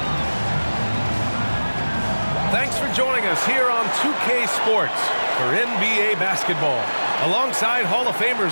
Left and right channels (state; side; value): inverted; both; correlation -1.00